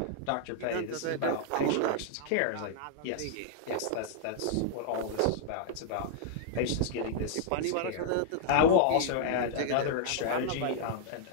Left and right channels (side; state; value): both; different; correlation -0.01